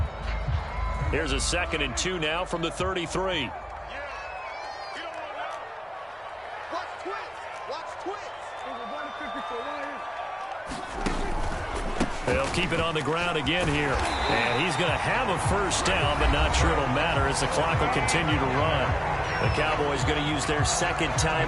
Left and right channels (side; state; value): both; identical; correlation 1.00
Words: Here's a 2nd and 2 now from the 33. They'll keep it on the ground again here. And he's going to have a first down, but not sure it'll matter as the clock will continue to run. The Cowboys going to use their 2nd